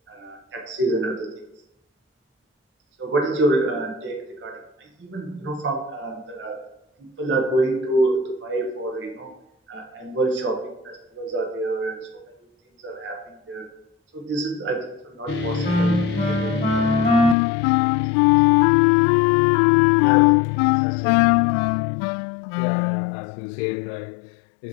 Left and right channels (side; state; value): right; drops out; at 17.4 s